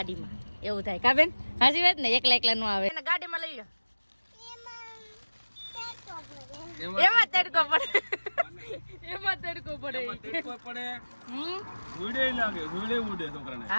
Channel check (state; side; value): inverted; both; correlation -1.00